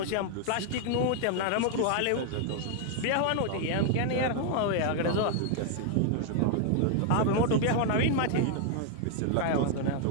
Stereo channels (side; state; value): both; different; correlation 0.00